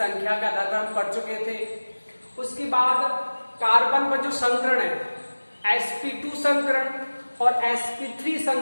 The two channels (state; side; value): inverted; both; correlation -1.00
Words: के आधार पर हम पढ़ चुके थे। उसके बाद कार्बन पर जो संकरण है sp2 संकरण और sp3